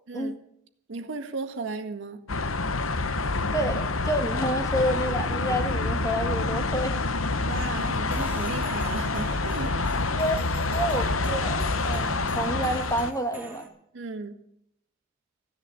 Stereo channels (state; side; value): normal; both; correlation 0.33